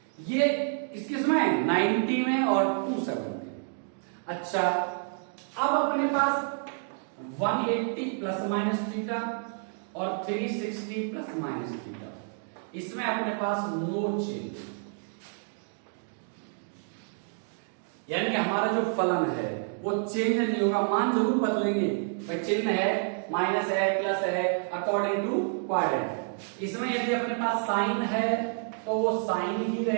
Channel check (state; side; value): silent; left; 59 dB below the other